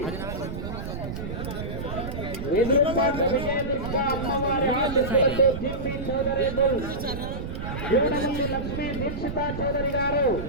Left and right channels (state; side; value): noise; right; rumble, 6 dB below the sound